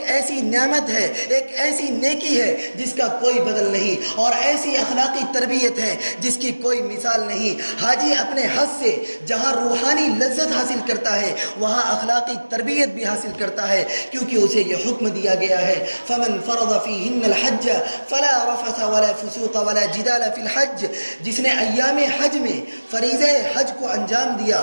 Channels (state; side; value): inverted; both; correlation -1.00